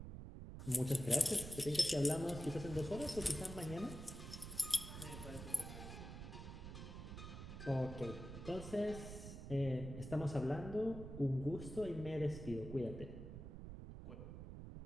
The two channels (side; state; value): right; noise; rumble, 9 dB below the sound